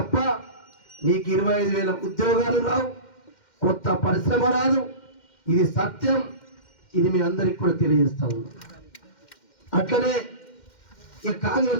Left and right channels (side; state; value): right; late; 2.1 ms